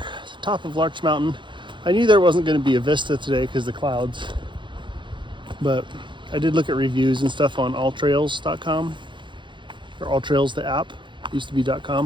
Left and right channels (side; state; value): left; late; 0.23 ms